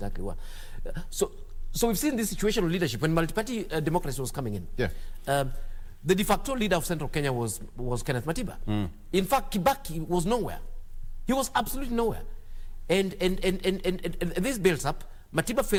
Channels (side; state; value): both; identical; correlation 1.00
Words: were. So we've seen this situation of leadership when multi-party democracy was coming in. The de facto leader of Central Kenya was Kenneth Matiba. In fact, Kibaki was nowhere. He was absolutely nowhere. And this builds up. Matiba